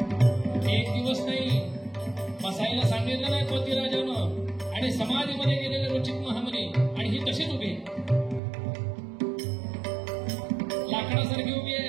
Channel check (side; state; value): left; drops out; at 8.4 s